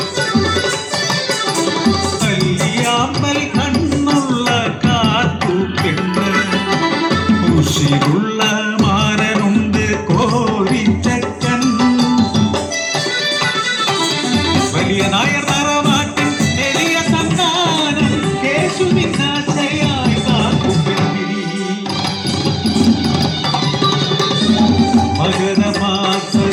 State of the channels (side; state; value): both; identical; correlation 1.00